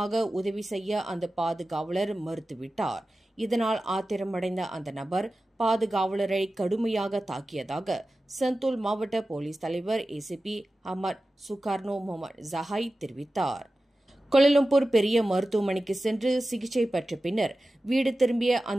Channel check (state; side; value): normal; both; correlation 0.94